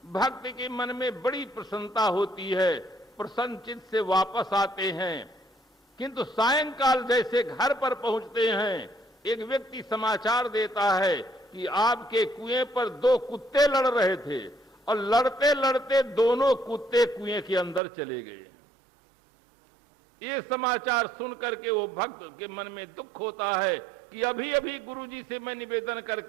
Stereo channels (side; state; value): left; drops out; at 17.8 s